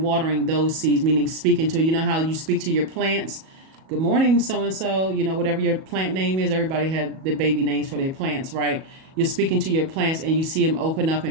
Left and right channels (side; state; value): left; late; 37 ms